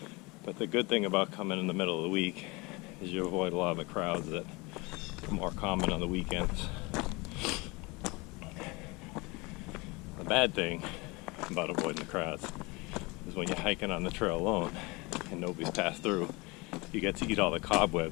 but the good thing about coming in the middle of the week is you avoid a lot of the crowds that more common on the weekends. The bad thing about avoiding the crowds is when you're hiking on the trail alone and nobody's passed through, you get to eat all the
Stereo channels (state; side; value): quieter; right; 25.5 dB